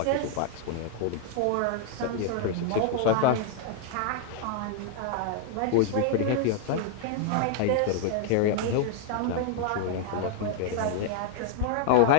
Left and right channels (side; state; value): both; different; correlation 0.00